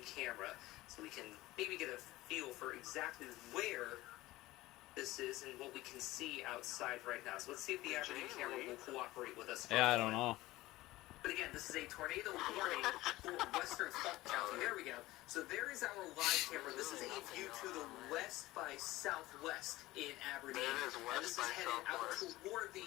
camera so we can maybe get a feel for exactly where this is and what we can see outside right now. So let's see if the Aberdeen camera will cooperate with us. Yeah, I don't know. But again, this is a tornado warning for western Falk County. There we go. So there is our live camera. This is a view to the west by southwest in Aberdeen. And this is headed out toward the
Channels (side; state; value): right; quieter; 18.0 dB